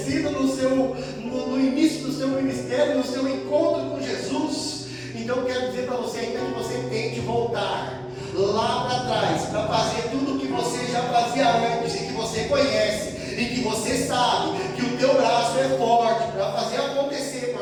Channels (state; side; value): identical; both; correlation 1.00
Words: no início do seu ministério, no seu encontro com Jesus. Então eu quero dizer para você, ainda que você tente voltar lá para trás, para fazer tudo o que você já fazia antes, e que você conhece, e que você sabe que o teu braço é forte para fazer acontecer,